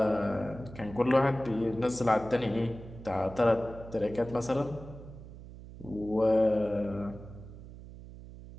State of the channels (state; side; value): noise; right; hum, 15 dB below the sound